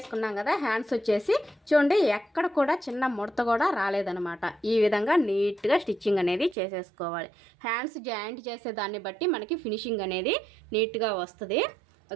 కదా, హ్యాండ్స్ వచ్చేసి చూడండి ఎక్కడ కూడా చిన్న ముడత కూడా రాలేదనమాట. ఈ విధంగా నీట్గా స్టిచ్చింగ్ అనేది చేసేసుకోవాలి. హ్యాండ్స్ జాయింట్ చేసే దాన్ని బట్టి మనకి ఫినిషింగ్ అనేది నీట్గా వస్తుంది.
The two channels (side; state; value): left; drops out; at 6.6 s